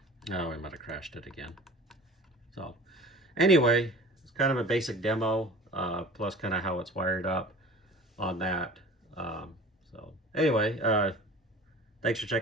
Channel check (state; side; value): normal; both; correlation 0.42